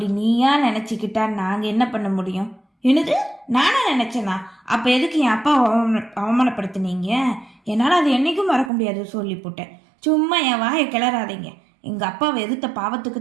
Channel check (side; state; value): left; drops out; at 8.7 s